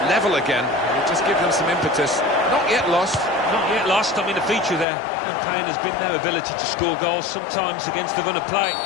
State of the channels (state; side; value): drops out; right; at 4.9 s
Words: level again. It'll just give them some impetus. Not yet lost. Not yet lost. I mean, the feature of their campaign has been their ability to score goals, sometimes against the run of play.